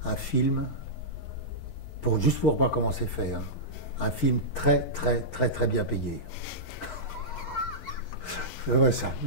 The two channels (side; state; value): right; late; 11 ms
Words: un film, juste pour voir comment c'est fait, hein. Un film très bien payé. Ouais, ça,